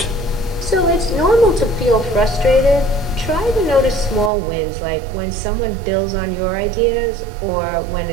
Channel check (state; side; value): drops out; left; at 4.3 s